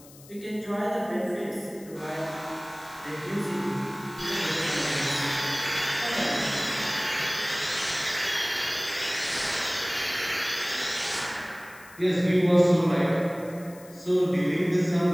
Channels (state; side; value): noise; left; hiss, 22 dB below the sound